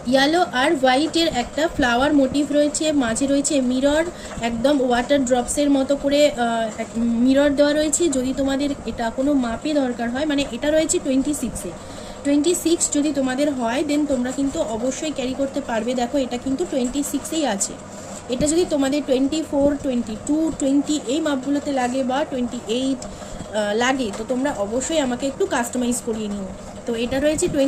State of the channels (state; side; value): identical; both; correlation 1.00